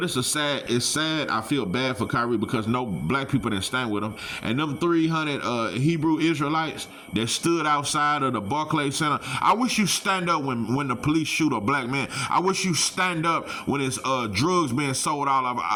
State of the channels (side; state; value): both; identical; correlation 1.00